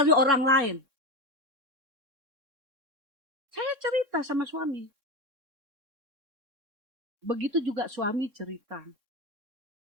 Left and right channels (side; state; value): left; late; 3.6 ms